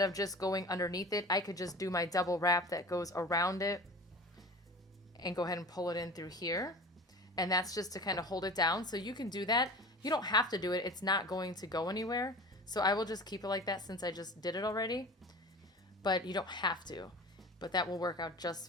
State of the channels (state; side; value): normal; both; correlation 0.36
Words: of just going underneath it, I could just do my double wrap that goes around it and go ahead and pull it in through here. And that's just to kind of hold it down. So you can do that. You don't have to do it. It's not going to go anywhere. So I will just keep it like that since I just did it already. But you don't have to. But that will work out